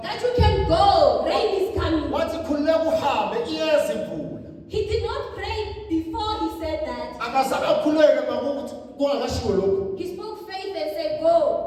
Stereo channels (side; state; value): both; identical; correlation 1.00